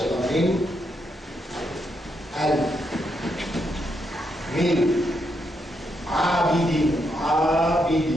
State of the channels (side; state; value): both; normal; correlation 0.80